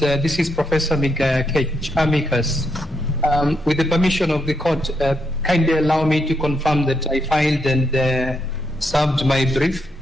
is Professor Kech, amicus. With the permission of the court, kindly allow me to confirm that I filed and served my brief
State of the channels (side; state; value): both; normal; correlation 0.79